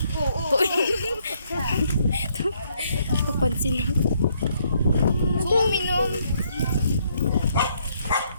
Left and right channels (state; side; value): inverted; both; correlation -0.71